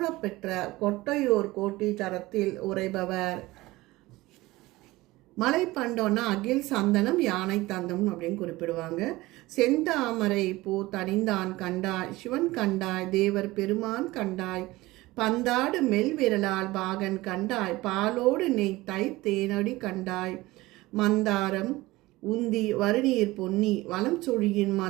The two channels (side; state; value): left; quieter; 19.5 dB